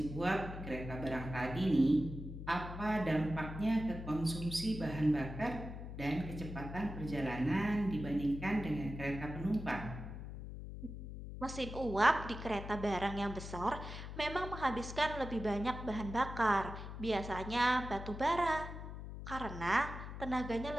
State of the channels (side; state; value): left; noise; hum, 9 dB below the sound